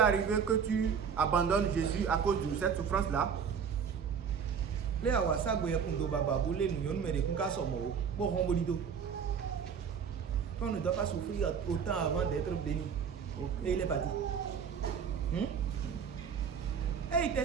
que tu abandonnes Jésus à cause de cette souffrance-là? On ne doit pas souffrir autant avant d'être béni. Et il est parti. Hey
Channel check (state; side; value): quieter; left; 6.8 dB